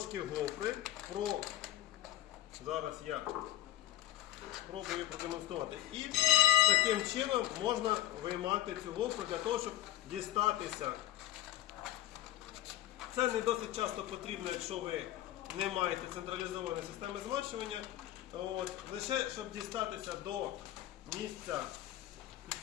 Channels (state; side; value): quieter; right; 14.0 dB